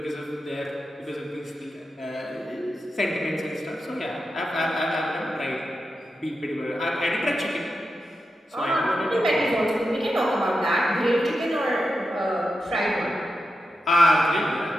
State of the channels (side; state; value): both; normal; correlation 0.89